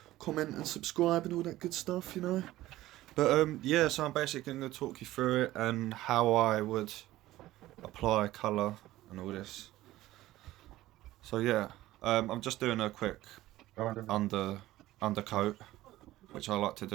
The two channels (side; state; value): left; quieter; 16.0 dB